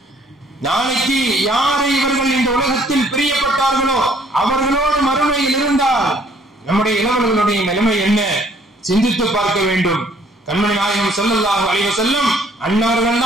நாளைக்கு யாரை இவர்கள் இந்த உலகத்தில் பிரியப்பட்டார்களோ அவர்களோடு மறுமையில் இருந்தால் நம்முடைய இளவல்களுடைய நிலைமை என்ன சிந்தித்து பார்க்க வேண்டும். கண்மணி நாயகம் ஸல்லல்லாஹு அலைஹி வஸல்லம் அன்னவர்கள்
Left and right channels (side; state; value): both; normal; correlation 0.61